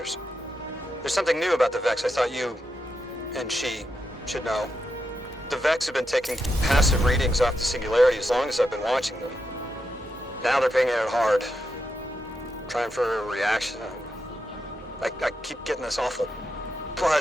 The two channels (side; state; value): both; normal; correlation 0.85